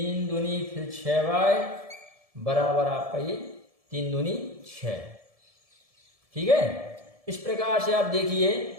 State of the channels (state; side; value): late; left; 1.7 ms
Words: दूनी फिर 6y बराबर आपका ये 3 दूनी 6। ठीक है, इस प्रकार से आप देखिए